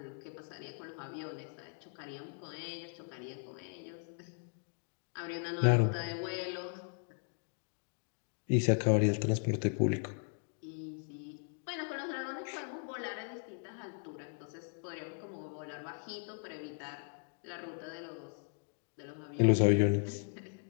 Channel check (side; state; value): right; silent; 53 dB below the other